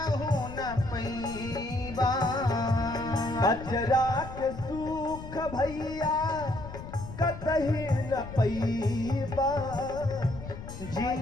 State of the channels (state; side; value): noise; left; rumble, 11 dB below the sound